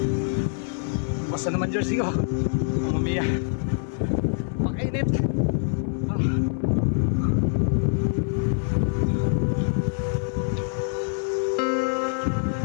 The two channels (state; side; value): silent; right; digital silence